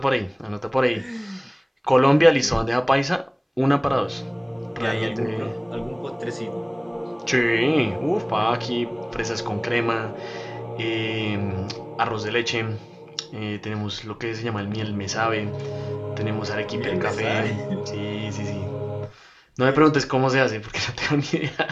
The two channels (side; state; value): both; identical; correlation 1.00